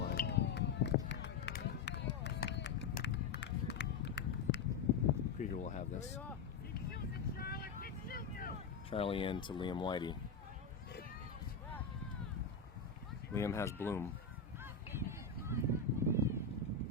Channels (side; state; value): right; quieter; 5.0 dB